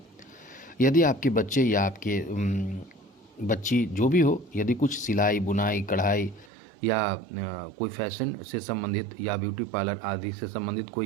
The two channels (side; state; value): left; drops out; at 6.5 s